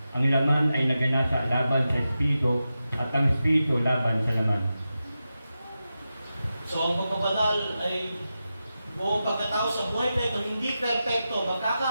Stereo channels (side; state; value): both; inverted; correlation -0.91